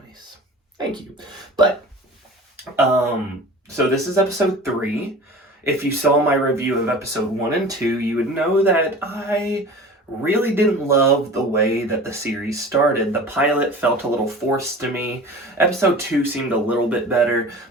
nice. Thank you. But so this is episode 3. If you saw my review of episode 1 and 2, you would know that I really didn't love the way that the series started. The pilot felt a little forced to me. Episode 2 seemed a little bit better,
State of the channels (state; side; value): normal; both; correlation 0.39